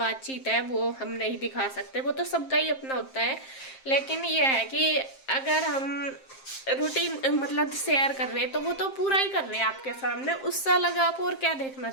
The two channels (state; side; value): late; right; 7.6 ms